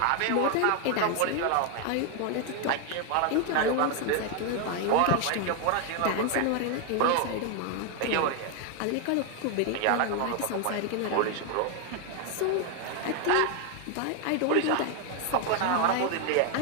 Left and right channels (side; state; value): both; different; correlation 0.01